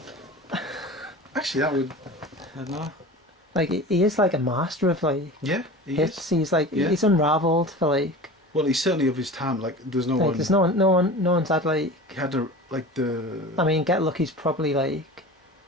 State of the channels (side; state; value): both; normal; correlation 0.35